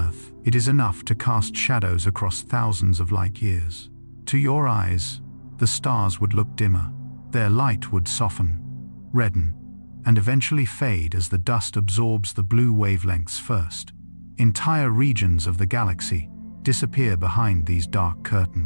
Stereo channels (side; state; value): both; inverted; correlation -1.00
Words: it is enough to cast shadows across thousands of light years. To your eyes, the stars would look dimmer. Their light would soften, redden, and eventually fade as the dust absorbs the blue wavelengths first. Entire regions of the galaxy disappear behind these dark